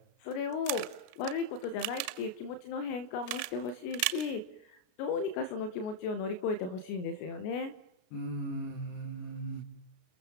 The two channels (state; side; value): late; right; 32 ms